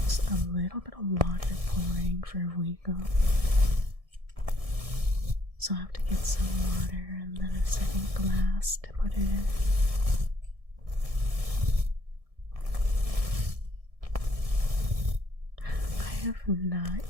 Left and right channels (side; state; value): left; late; 1.7 ms